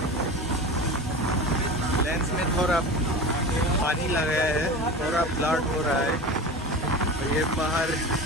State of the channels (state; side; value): normal; both; correlation 0.31